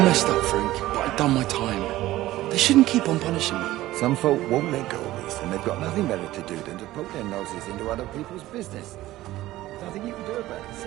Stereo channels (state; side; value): quieter; left; 16.1 dB